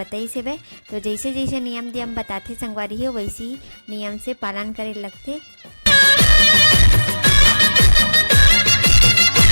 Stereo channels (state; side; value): inverted; both; correlation -1.00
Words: से वे। तो जैसे जैसे नियम धियम बताते संगवारी हो, वैसी नियम से पालन करे लगते।